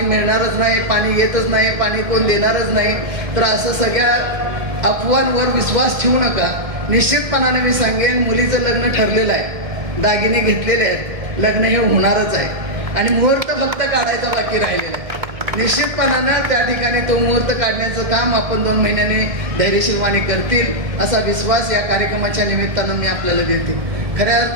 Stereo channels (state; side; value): late; left; 1.7 ms